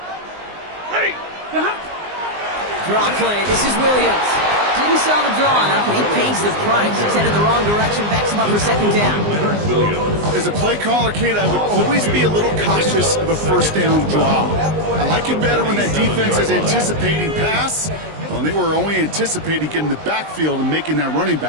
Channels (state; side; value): late; left; 19 ms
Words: Ready. Draw play, this is Williams. Didn't sell the draw enough, and he pays the price. He's headed the wrong direction, backs him up for 2nd down. As a play caller, Kate, I would always be a little cautious of a 1st down draw. I like it better when that defense is anticipating pass. Well, they were only anticipating getting the backfield and making that running